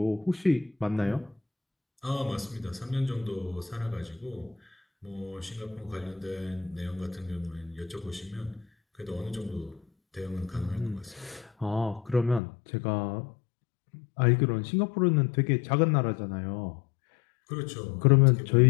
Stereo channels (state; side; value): drops out; right; at 12.4 s